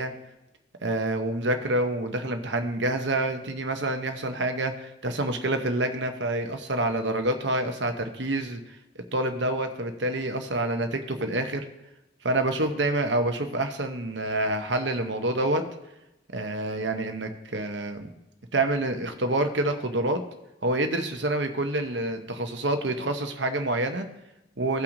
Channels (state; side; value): normal; both; correlation 0.03